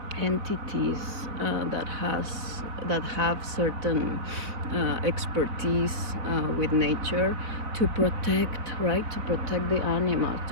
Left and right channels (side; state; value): left; late; 3.8 ms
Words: entities that have certain expertise with nature, to protect, right? To protect the animals,